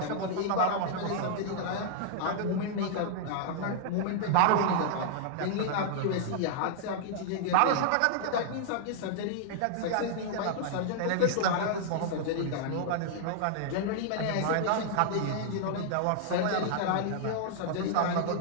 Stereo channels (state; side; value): different; both; correlation -0.01